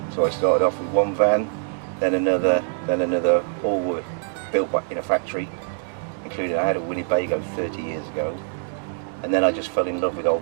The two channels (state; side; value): silent; left; digital silence